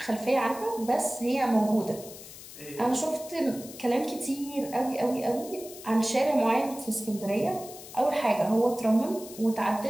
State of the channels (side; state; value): left; noise; hiss, 15 dB below the sound